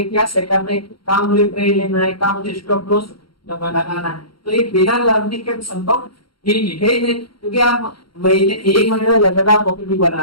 क्या सेटअप है, काम मुझे ट्रेड लेना है, काम मुझे स्टॉप लॉस लगाना है। तो ये बिना लर्निंग के संभव ही नहीं, क्योंकि आप महीने 1 महीने में लगातार प्रॉफिट भी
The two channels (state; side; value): late; right; 0.73 ms